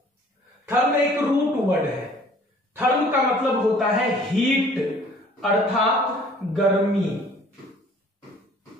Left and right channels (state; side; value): normal; both; correlation 0.54